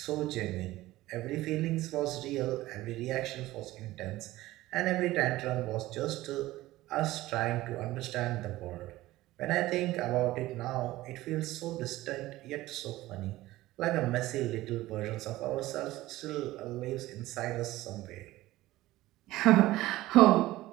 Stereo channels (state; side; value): quieter; left; 17.1 dB